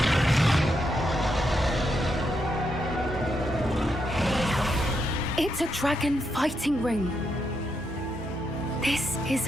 It's a dragon fighting ring. This is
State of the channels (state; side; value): normal; both; correlation 0.81